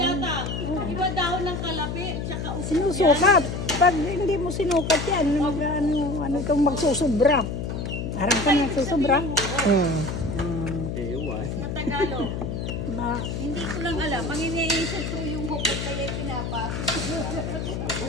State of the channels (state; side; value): noise; left; hum, 4 dB below the sound